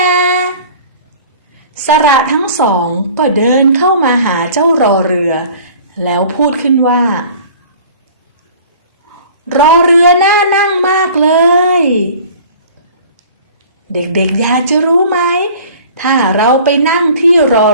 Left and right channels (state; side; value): inverted; both; correlation -0.46